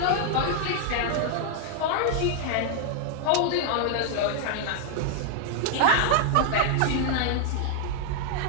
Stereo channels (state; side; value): different; both; correlation 0.00